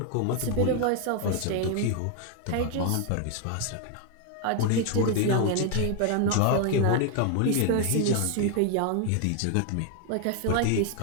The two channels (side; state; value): both; different; correlation 0.00